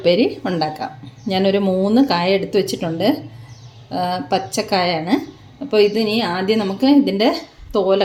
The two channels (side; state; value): both; identical; correlation 1.00